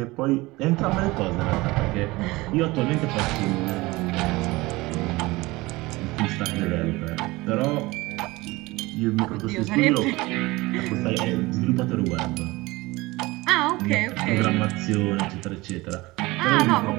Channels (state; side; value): quieter; left; 21.2 dB